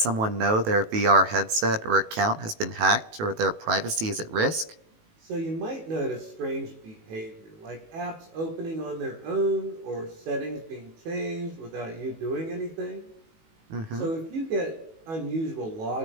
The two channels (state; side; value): late; left; 18 ms